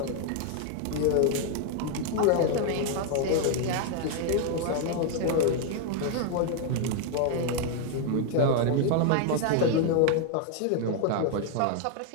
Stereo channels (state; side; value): different; both; correlation 0.00